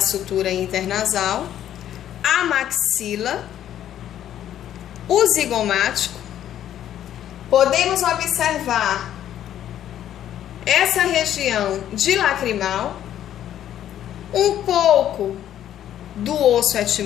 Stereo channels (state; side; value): quieter; right; 11.1 dB